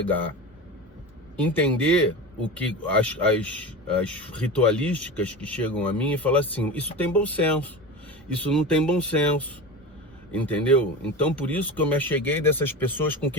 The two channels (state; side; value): normal; both; correlation 0.28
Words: Entender o que as ritualísticas que chegam a mim e falar assim, isso tem bom senso, isso não tem bom senso, entendeu? Então por isso que eu me acheguei dessas pessoas com